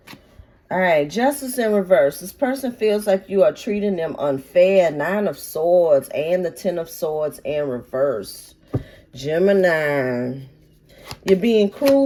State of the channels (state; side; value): identical; both; correlation 1.00